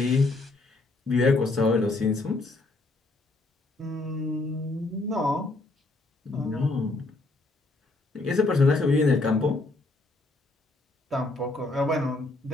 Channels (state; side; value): quieter; right; 3.1 dB